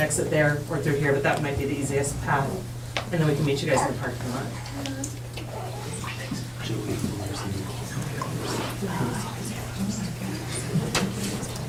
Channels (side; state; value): both; identical; correlation 1.00